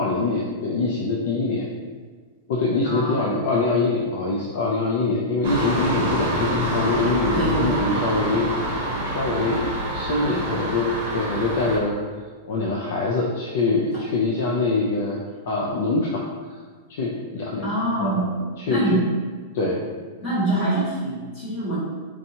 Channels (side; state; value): both; normal; correlation -0.13